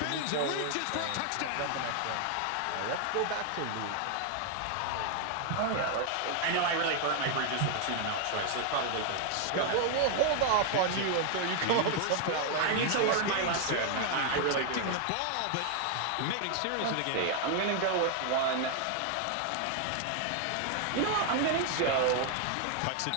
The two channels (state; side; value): different; both; correlation 0.00